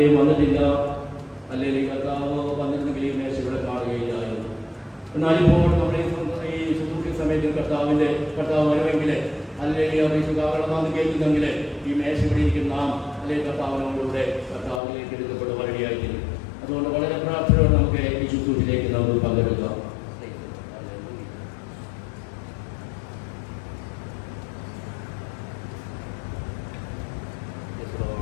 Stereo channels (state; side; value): drops out; right; at 14.8 s